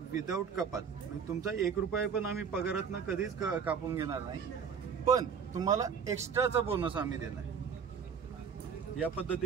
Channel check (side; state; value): left; quieter; 6.7 dB